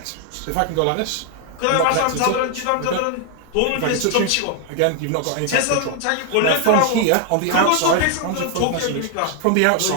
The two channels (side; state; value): both; different; correlation 0.00